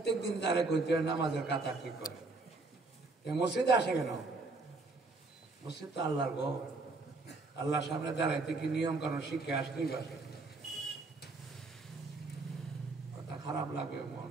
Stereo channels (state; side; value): quieter; left; 3.5 dB